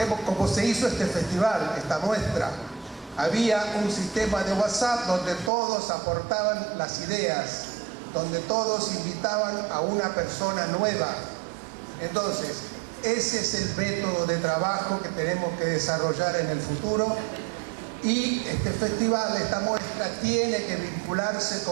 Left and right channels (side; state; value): left; drops out; at 5.5 s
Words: como se hizo este festival, esta muestra. Había un sistema de WhatsApp donde todos aportaban las ideas, donde todos invitaban a una persona nueva. Entonces, ese es el método de trabajo que tenemos que desarrollar en el futuro, y este festival, esta muestra, tiene que vincularse